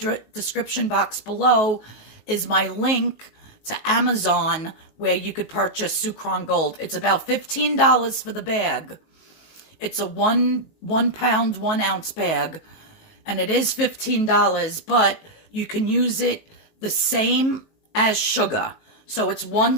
description box below is my link to Amazon where you could purchase Sucre on Gold. It's about $15 for the bag. It's a one pound, 1 ounce bag, and it is $15, but you can use it the same as sugar. So it's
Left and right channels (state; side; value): late; right; 19 ms